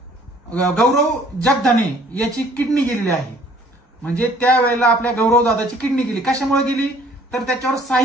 जगदाने याची किडनी गेलेली आहे. म्हणजे त्यावेळेला आपल्या गौरव दादाची किडनी गेली. कशामुळे गेली? तर त्याच्यावर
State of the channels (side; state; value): both; normal; correlation 0.57